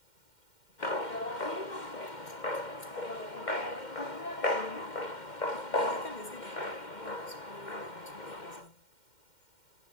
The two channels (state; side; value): late; right; 2.1 ms